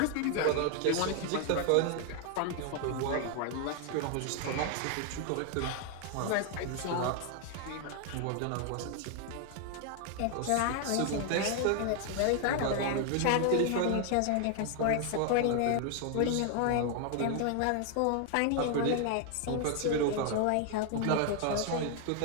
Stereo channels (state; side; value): different; both; correlation 0.00